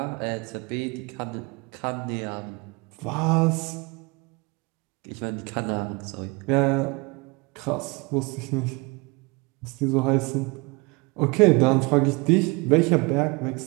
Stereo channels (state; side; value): quieter; left; 27.5 dB